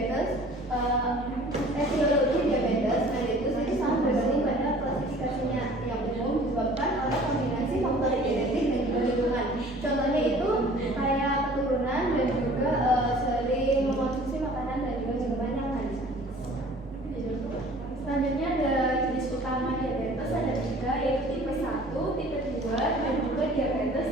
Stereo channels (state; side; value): normal; both; correlation 0.49